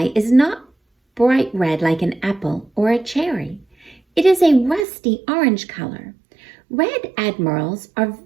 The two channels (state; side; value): drops out; left; at 4.9 s